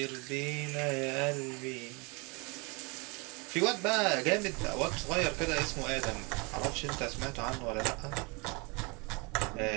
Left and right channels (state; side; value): quieter; left; 29.7 dB